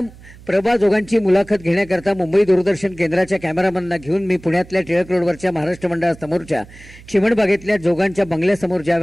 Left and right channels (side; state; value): right; noise; hum, 21 dB below the sound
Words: प्रभा जोगांची मुलाखत घेण्याकरता मुंबई दूरदर्शन केंद्राच्या कॅमेरामॅनना घेऊन मी पुण्यातल्या टिळक रोडवरच्या महाराष्ट्र मंडळासमोरच्या चिमणबागेतल्या जोगांच्या बंगल्यासमोर